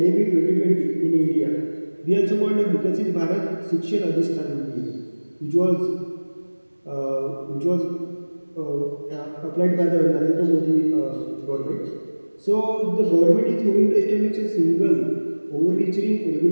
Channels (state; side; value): inverted; both; correlation -1.00